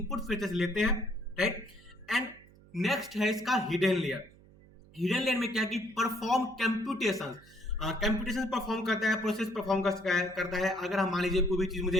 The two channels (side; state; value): right; noise; hum, 24 dB below the sound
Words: फीचर्स लेते हैं, राइट। एंड नेक्स्ट है इसका हिडन लेयर। हिडन लेयर में क्या कि परफॉर्म कंप्यूटेशन, कंप्यूटेशन परफॉर्म करता है, प्रोसेस परफॉर्म करता है। अगर हम मान लीजिए कोई भी चीज